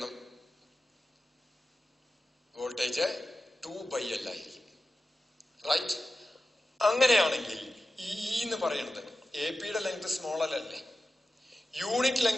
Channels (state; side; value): normal; both; correlation 0.94